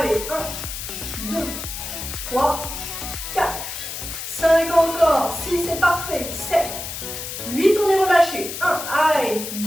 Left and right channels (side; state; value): left; noise; hiss, 7 dB below the sound